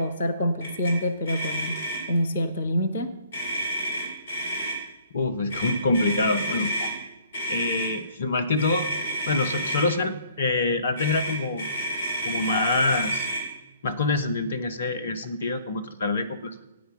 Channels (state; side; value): inverted; both; correlation -0.60